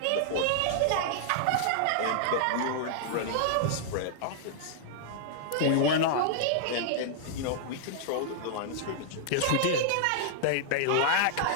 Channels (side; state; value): both; different; correlation -0.01